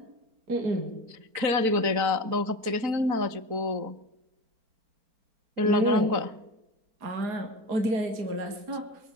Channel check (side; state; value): left; late; 4.4 ms